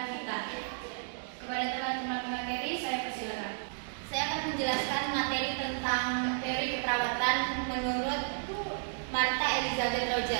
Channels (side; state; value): left; silent; digital silence